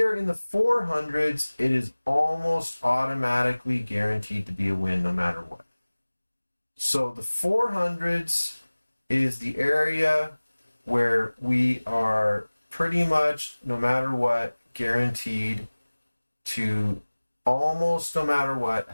are in the 400s, it is almost automatically guaranteed to be a win no matter what. So the 400s is the area where we are pretty much, no matter what, guaranteed to almost no matter what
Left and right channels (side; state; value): both; inverted; correlation -1.00